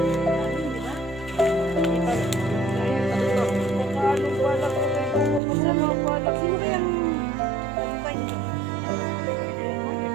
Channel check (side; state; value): left; drops out; at 5.4 s